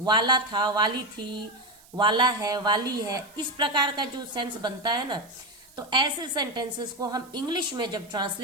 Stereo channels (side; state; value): right; noise; hiss, 25 dB below the sound